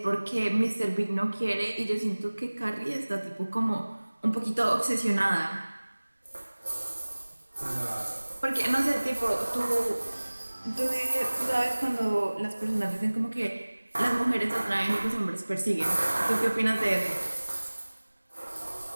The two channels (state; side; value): inverted; both; correlation -1.00